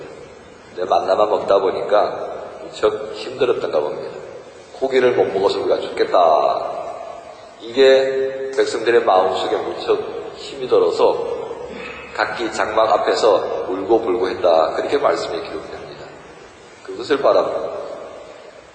근데 만나만 먹다 보니까 무척 힘들었던가 봅니다. 고기를 못 먹어서 우리가 죽겠다. 이게 백성들의 마음속에 무척 힘이 들어서 각기 장막 앞에서 울고불고 했다. 그렇게 말씀이 기록됩니다. 그것을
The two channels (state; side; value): identical; both; correlation 1.00